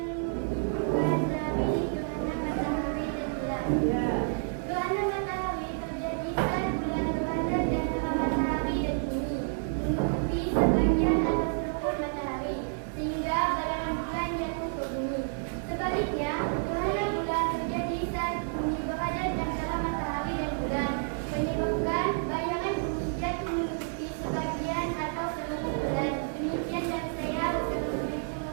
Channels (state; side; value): silent; left; 58 dB below the other